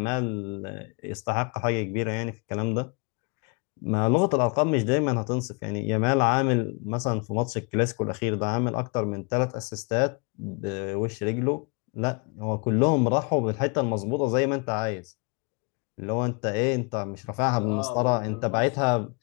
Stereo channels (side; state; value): right; quieter; 32.8 dB